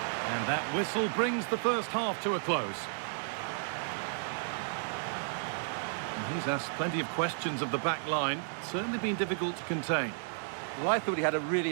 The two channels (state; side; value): silent; left; digital silence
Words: And that whistle brings the first half to a close. And he's asked plenty of questions of the back line. Certainly been difficult to contain. Well, I thought he had a really